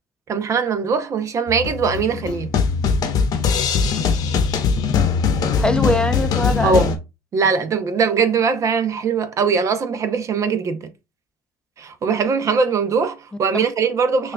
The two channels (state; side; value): normal; both; correlation 0.45